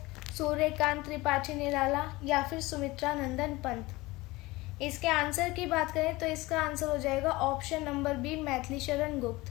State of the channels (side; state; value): right; quieter; 21.0 dB